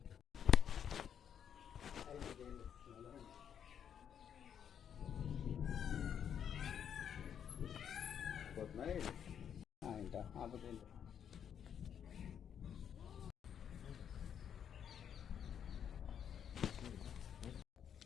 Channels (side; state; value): right; quieter; 8.5 dB